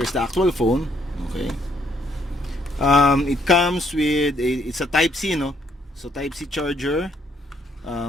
the actual phone. Okay, it comes with it's a type C, so type C charger,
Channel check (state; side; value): normal; both; correlation 0.69